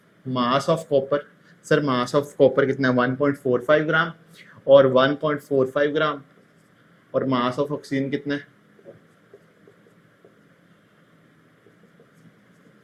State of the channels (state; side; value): identical; both; correlation 1.00